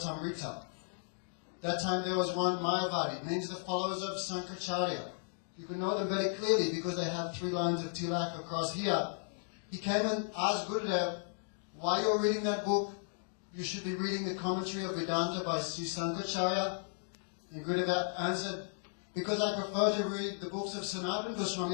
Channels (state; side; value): silent; right; digital silence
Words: That time there was one Mayavadi, means the followers of Sankaracharya. You can know them very clearly because they have 3 lines of tilak across here. He came and asked Gurudeva, why you're reading that book? You should be reading the commentary of Vedanta by Sri Sankaracharya. And Gurudeva answered, because I prefer to read the books of Sanatana